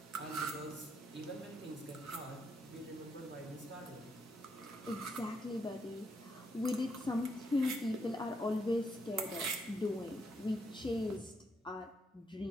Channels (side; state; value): both; normal; correlation 0.77